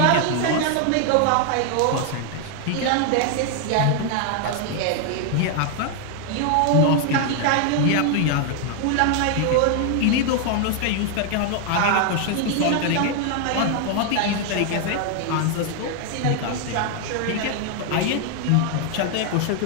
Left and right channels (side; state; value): both; different; correlation 0.00